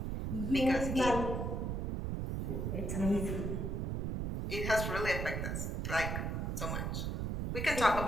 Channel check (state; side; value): noise; right; rumble, 1 dB below the sound